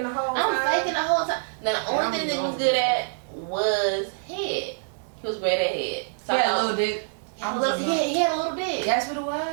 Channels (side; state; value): left; silent; digital silence